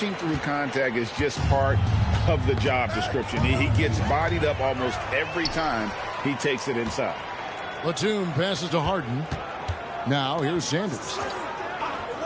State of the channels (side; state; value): both; identical; correlation 1.00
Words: through contact is just part of the job description. He gets bodied up almost every time he takes it inside. Batum passes to Harden. Now here's Sanders.